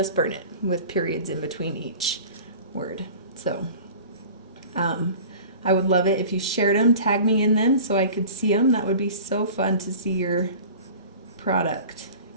burn it, with periods in between each word. So I would love it if you shared them, tag me in them so I could see them. That would be so fun to see your product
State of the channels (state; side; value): inverted; both; correlation -0.41